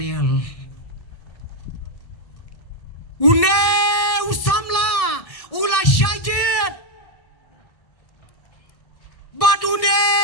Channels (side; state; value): right; late; 1.6 ms